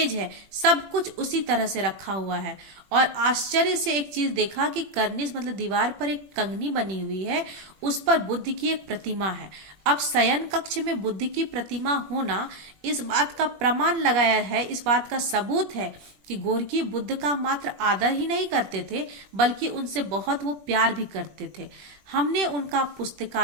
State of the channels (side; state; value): left; late; 21 ms